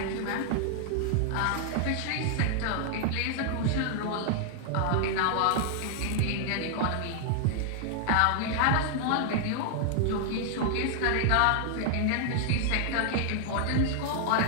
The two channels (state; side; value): different; both; correlation 0.00